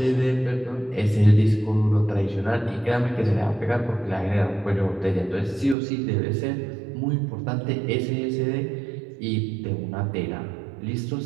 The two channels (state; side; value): drops out; left; at 5.8 s